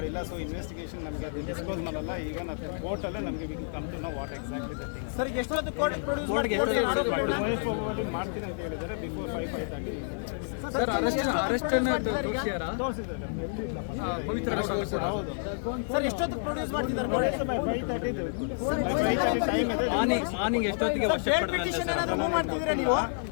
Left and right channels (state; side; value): silent; right; digital silence